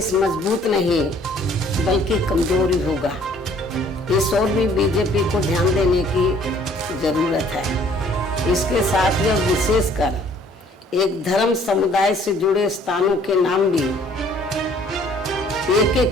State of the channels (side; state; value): both; normal; correlation 0.58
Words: मजबूत नहीं बल्कि कमजोरी होगा। इस ओर भी बीजेपी को ध्यान देने की जरूरत है। इसके साथ यह विशेषकर एक धर्म समुदाय से जुड़े स्थानों के नाम भी एक